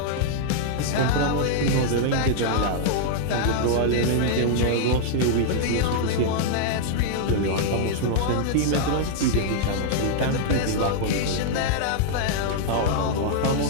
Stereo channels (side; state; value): both; different; correlation -0.01